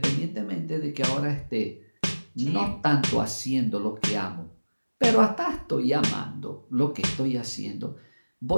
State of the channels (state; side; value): inverted; both; correlation -1.00